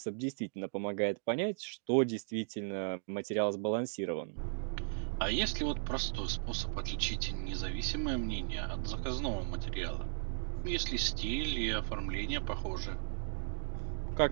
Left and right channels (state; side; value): silent; left; digital silence